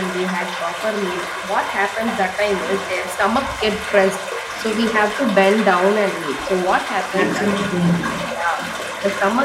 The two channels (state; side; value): identical; both; correlation 1.00